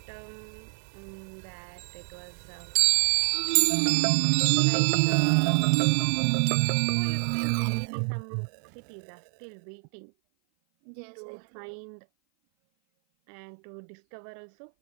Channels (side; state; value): left; silent; 56 dB below the other